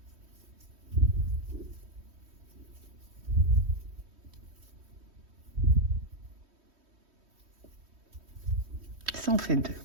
Ça en fait 2.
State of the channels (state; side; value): late; left; 3.1 ms